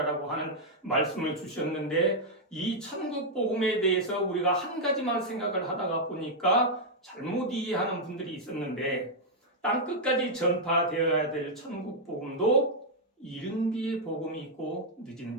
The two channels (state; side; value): normal; both; correlation -0.03